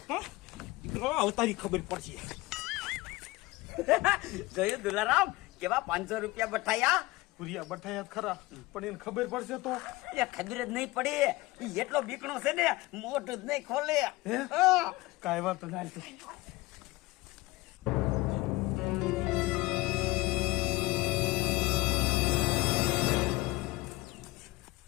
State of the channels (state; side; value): quieter; right; 20.7 dB